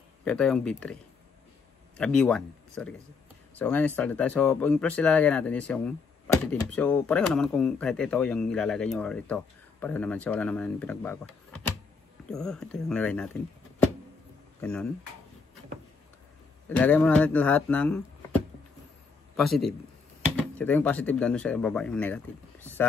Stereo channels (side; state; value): right; quieter; 4.8 dB